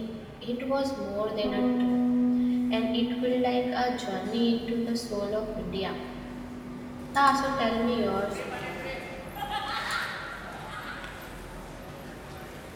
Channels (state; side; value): identical; both; correlation 1.00